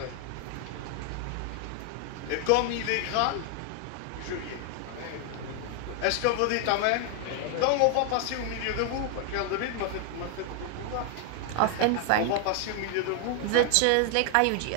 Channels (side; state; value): both; different; correlation 0.00